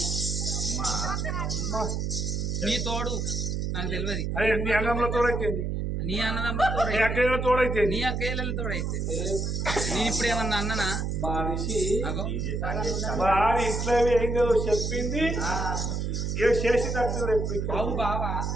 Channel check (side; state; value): right; noise; hum, 1 dB below the sound